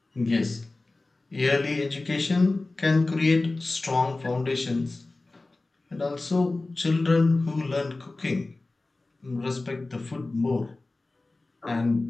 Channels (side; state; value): right; quieter; 3.1 dB